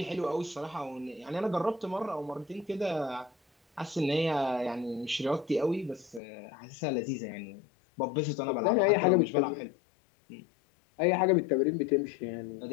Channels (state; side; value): drops out; right; at 6.2 s